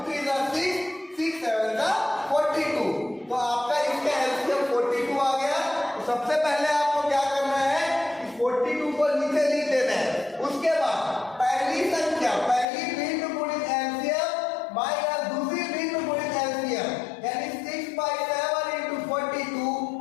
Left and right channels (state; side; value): drops out; right; at 12.7 s